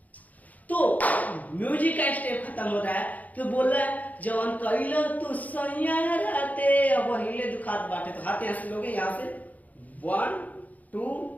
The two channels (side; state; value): right; late; 0.077 ms